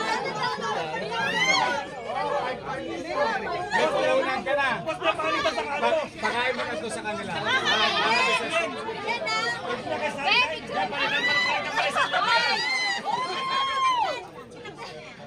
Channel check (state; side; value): identical; both; correlation 1.00